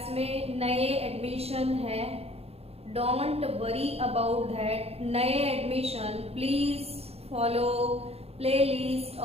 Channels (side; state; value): left; late; 0.29 ms